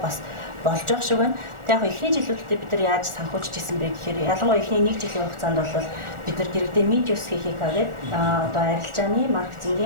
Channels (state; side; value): late; left; 1.4 ms